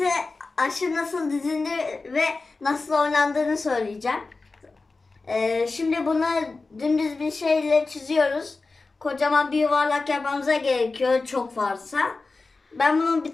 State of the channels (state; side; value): quieter; right; 3.7 dB